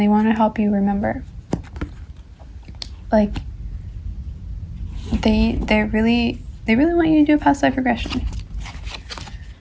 they want to help you remember. Like, They really want you to do a past life regression.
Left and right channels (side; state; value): both; identical; correlation 1.00